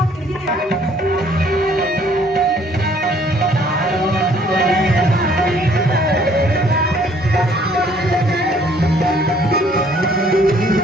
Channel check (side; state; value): both; normal; correlation 0.61